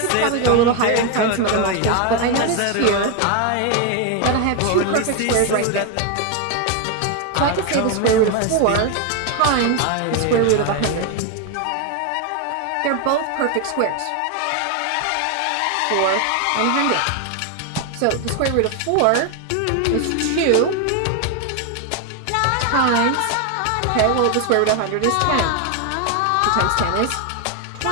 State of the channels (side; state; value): both; different; correlation 0.01